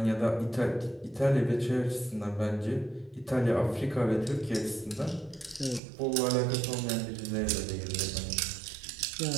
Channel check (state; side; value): drops out; left; at 5.8 s